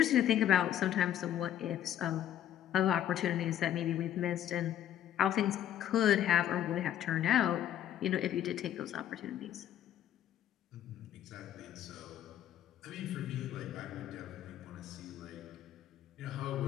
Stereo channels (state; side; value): quieter; right; 11.1 dB